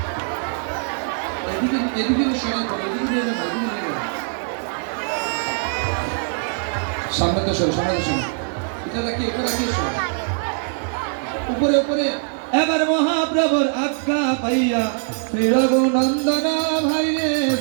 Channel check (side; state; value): left; silent; 59 dB below the other